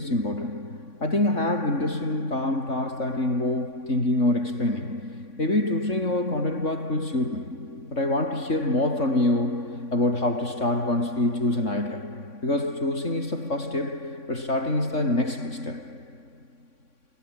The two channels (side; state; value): right; late; 3.6 ms